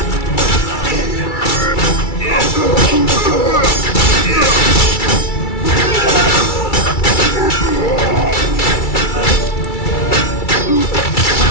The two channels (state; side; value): late; right; 2.3 ms